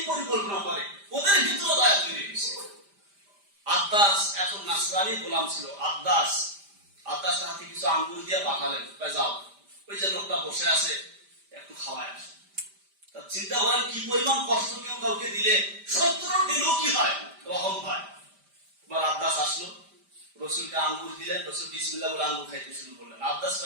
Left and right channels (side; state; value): left; late; 5.0 ms